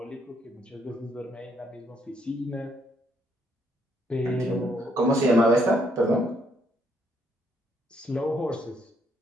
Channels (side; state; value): both; normal; correlation 0.71